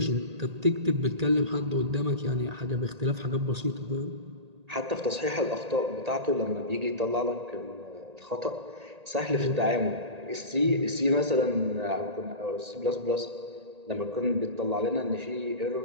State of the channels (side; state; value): left; late; 1.8 ms